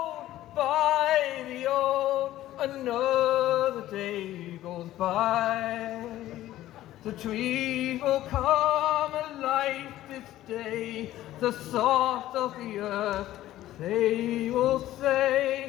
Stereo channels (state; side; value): quieter; right; 14.3 dB